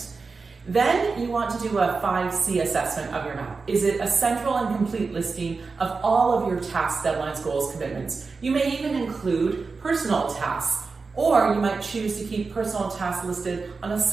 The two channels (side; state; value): left; quieter; 4.4 dB